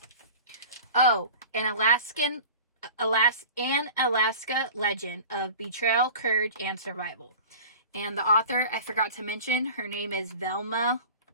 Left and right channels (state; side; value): inverted; both; correlation -0.39